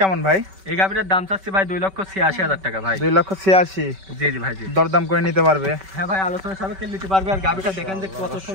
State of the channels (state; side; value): late; left; 5.2 ms